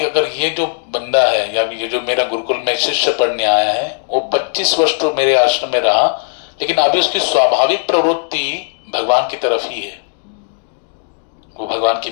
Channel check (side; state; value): right; silent; digital silence